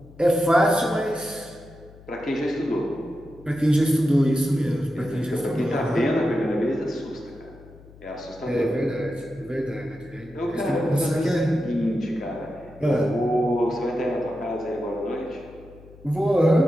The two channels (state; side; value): noise; left; hum, 22 dB below the sound